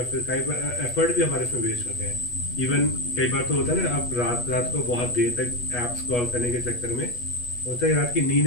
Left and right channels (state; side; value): late; right; 8.3 ms